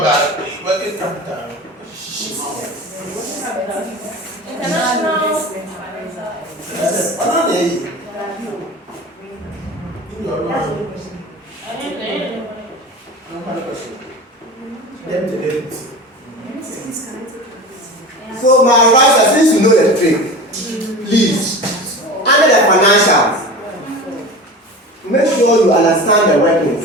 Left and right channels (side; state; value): both; normal; correlation 0.32